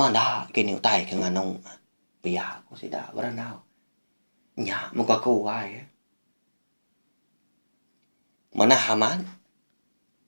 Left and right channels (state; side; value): inverted; both; correlation -1.00